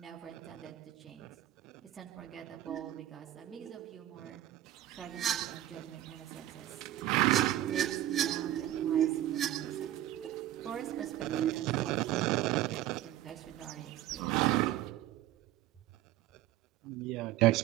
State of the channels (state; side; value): quieter; left; 13.5 dB